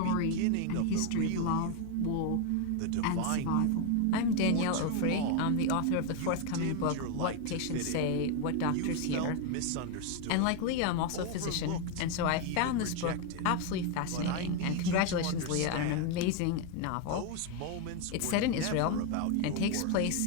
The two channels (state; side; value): different; both; correlation 0.01